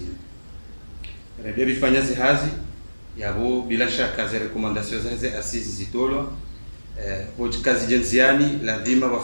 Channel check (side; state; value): both; inverted; correlation -1.00